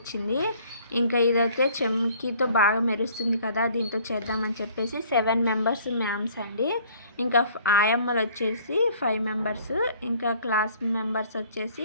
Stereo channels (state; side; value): inverted; both; correlation -0.56